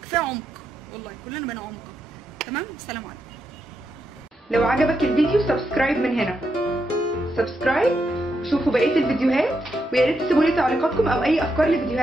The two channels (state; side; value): normal; both; correlation 0.83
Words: كفايه عمق، والله كلنا بقينا عمق. تمام، سلام عليكم. لو عجبك الفيديو سبسكرايب من هنا، سبسكرايب، شوفوا بقيه الفيديوهات، ويا ريت تسيبوا لي تعليقاتكم او اي افكار